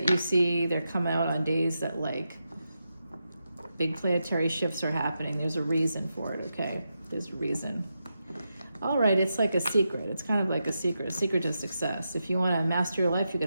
you see, they're coming out on days that like big planetary shifts are happening. There's a reason for it, okay? There's a reason. All right, it's like a secret. It's kind of like a secret to success. If you want to master your life, you're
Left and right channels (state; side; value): inverted; both; correlation -0.87